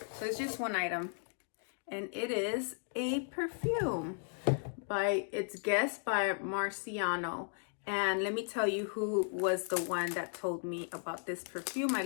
So it's just one item, and it is a perfume it's guessed by Marciano. And let me tell you who was the one that told me about this perfume. I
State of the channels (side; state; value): right; silent; 54 dB below the other